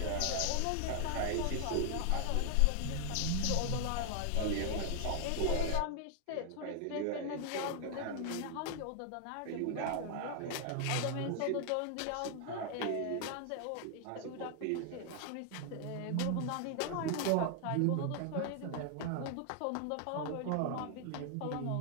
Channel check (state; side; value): different; both; correlation 0.00